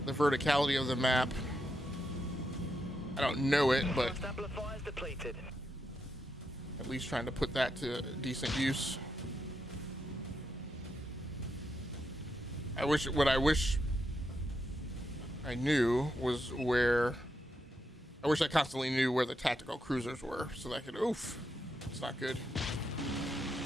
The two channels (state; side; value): normal; both; correlation 0.83